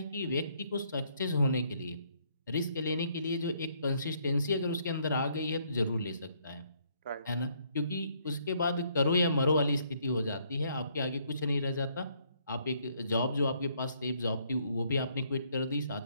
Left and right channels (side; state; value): both; inverted; correlation -0.69